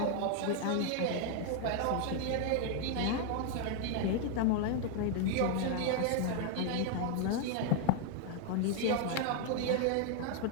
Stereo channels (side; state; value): both; different; correlation 0.00